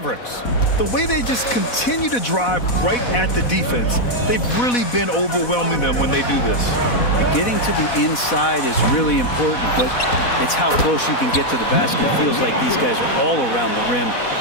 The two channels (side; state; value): right; late; 4.1 ms